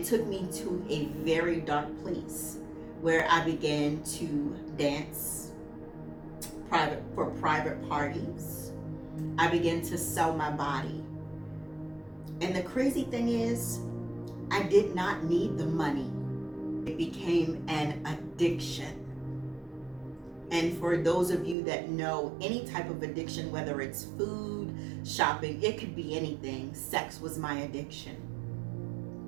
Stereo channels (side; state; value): left; drops out; at 21.6 s